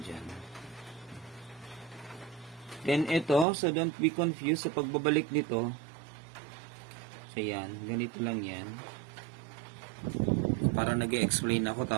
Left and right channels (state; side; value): drops out; left; at 3.5 s